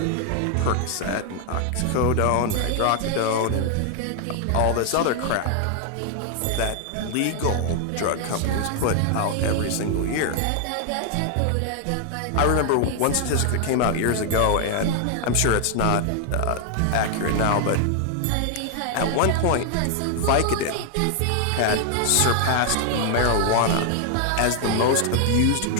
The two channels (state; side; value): different; both; correlation 0.00